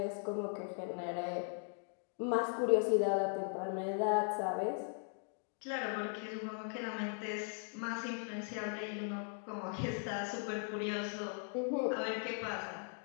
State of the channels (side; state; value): right; silent; 52 dB below the other